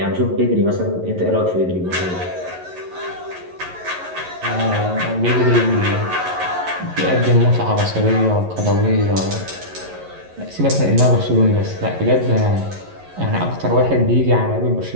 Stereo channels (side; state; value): left; late; 11 ms